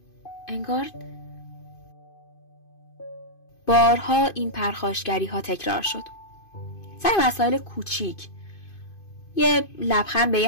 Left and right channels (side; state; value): right; late; 2.5 ms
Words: انگار بارها این پرخاشگری ها تکرار شد. سر مسائل کوچیک، یه لبخند به